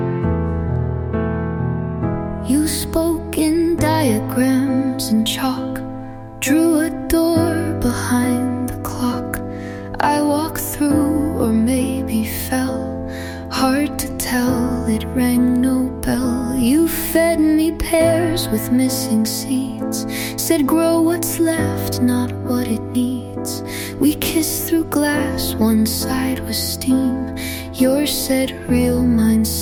You spoke in diagrams and chalk, drew a door behind the clock. I walked through, or maybe fell. Hard to tell, it rang no bell. You fed me pears with missing seeds, said grow what's left, not what it needs. We kissed through glass, one side was steam. Yours said real, mine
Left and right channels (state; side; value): identical; both; correlation 1.00